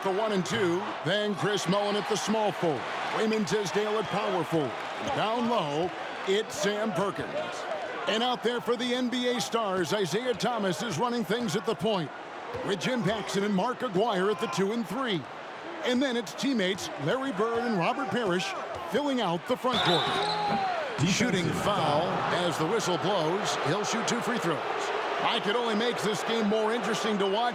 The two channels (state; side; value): identical; both; correlation 1.00